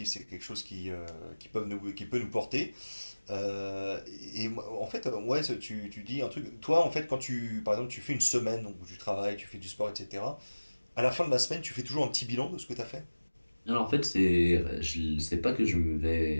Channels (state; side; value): inverted; both; correlation -1.00